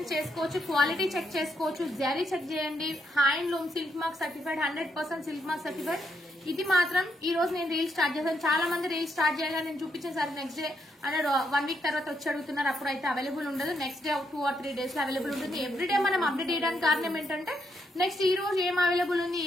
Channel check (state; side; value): normal; both; correlation 0.78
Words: చేసుకోవచ్చు, క్వాలిటీ చెక్ చేసుకోవచ్చు, జరీ చెక్ చేయండి. Handloom silk mark certified, 100% silk mark certified. ఇది మాత్రం ఈ రోజు నేను రీల్ స్టార్ట్ చేశాను. చాలా మంది రీల్ స్టార్ట్ చేయాలని నేను చూపించిన సార్ నెక్స్ట్ డే అంటే 1 వీక్ తర్వాత వచ్చి అడుగుతున్నారు, అప్పుడు అయితే అవైలబుల్ ఉండదు. నెక్స్ట్ డే 2 or 3 డేస్ లో అవైలబుల్ ఉంటుంది. ఎవ్రీడే మనం అప్డేట్ చేయడానికి కారణం ఏంటంటే నెక్స్ట్ ఈ రోజు ఏం అవైలబుల్ ఉంది,